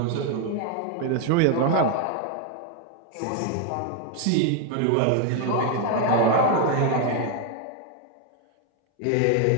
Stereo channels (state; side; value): different; both; correlation 0.01